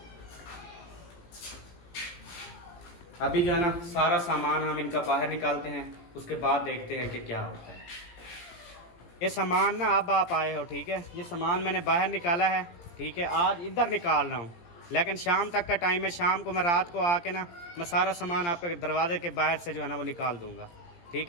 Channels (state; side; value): late; right; 17 ms